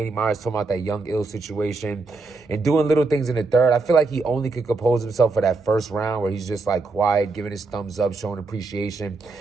Myers, talking about that Young Ill situation and doing little things in the third. I feel like he only could compose himself for that first round where he's just like quiet, giving his thumbs up, showing appreciation.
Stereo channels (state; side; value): quieter; left; 3.7 dB